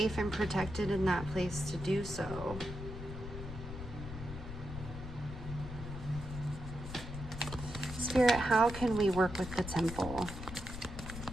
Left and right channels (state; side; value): noise; left; rumble, 9 dB below the sound